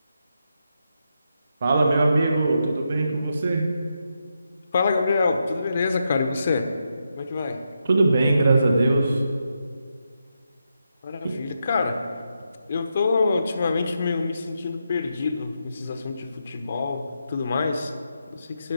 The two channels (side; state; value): both; inverted; correlation -0.84